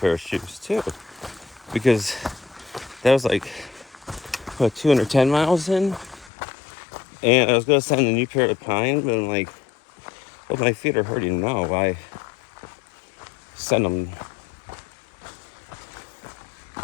of shoes, too. Because that was, like, 210 miles in? And I was going to send a new pair of Pine, but I'm like, well, my feet are hurting now. Why send them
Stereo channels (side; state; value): right; drops out; at 6.3 s